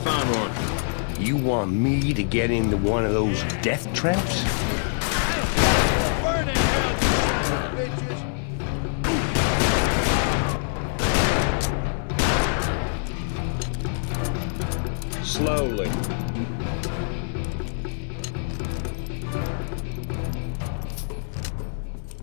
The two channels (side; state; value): right; silent; 62 dB below the other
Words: one. You want me to get into one of those death traps?